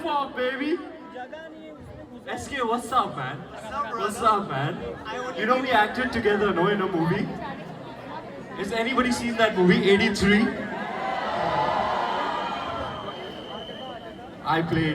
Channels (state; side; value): identical; both; correlation 1.00